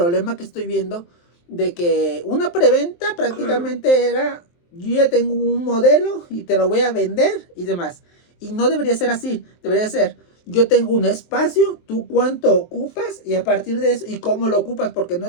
que estoy viendo de que una preventa prácticamente era, yo ya tengo un modelo y te lo voy a vender y demás. Y no debería ser así, debería ser, yo tengo un espacio, tú cuánto ocupas y a partir de eso, y cómo lo ocupas, porque no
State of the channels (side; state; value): right; late; 23 ms